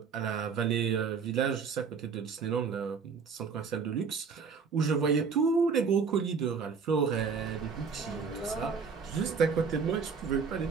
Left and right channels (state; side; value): quieter; left; 5.6 dB